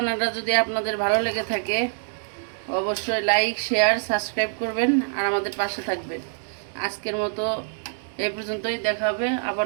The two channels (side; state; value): left; silent; digital silence